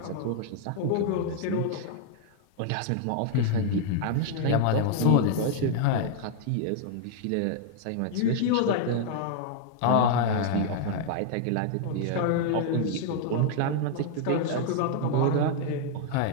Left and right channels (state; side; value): different; both; correlation -0.01